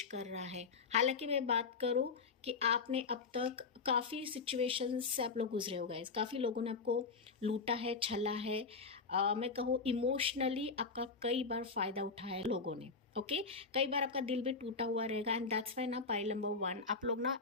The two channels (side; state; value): right; quieter; 4.7 dB